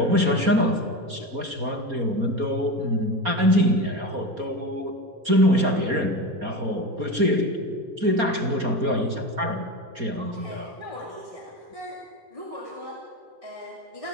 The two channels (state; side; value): late; left; 4.3 ms